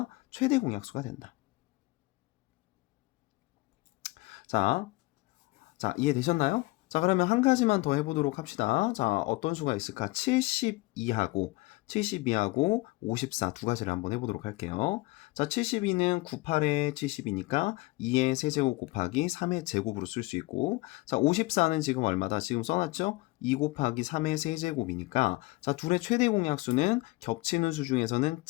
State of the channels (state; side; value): quieter; right; 22.3 dB